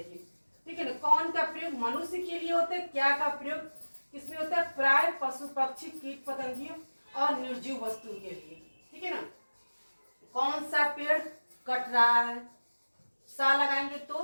ठीक है ना, कौन का प्रयोग मनुष्य के लिए होता है, क्या का प्रयोग किसमें होता है, प्राय पशु पक्षी कीट पतंगियों और निर्जीव वस्तु के लिए। ठीक है ना, कौन सा पेड़ कट रहा है, सा लगाएंगे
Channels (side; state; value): both; inverted; correlation -1.00